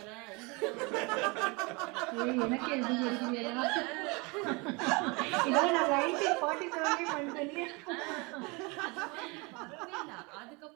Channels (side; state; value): left; quieter; 28.0 dB